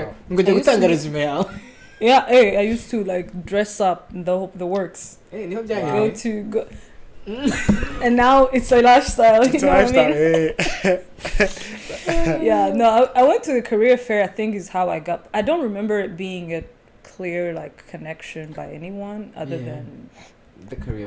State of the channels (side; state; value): both; identical; correlation 1.00